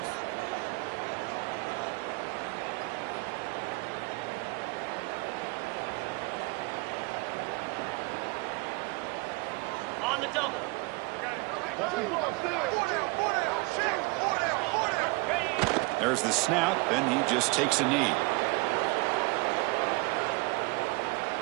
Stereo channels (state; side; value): quieter; left; 26.7 dB